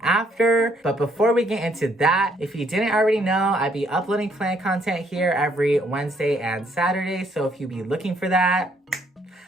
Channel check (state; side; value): normal; both; correlation 0.69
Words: after. But before we get into that, if you didn't already know, I'd be uploading plant content here every Wednesday and Saturday. So if you be looking for that,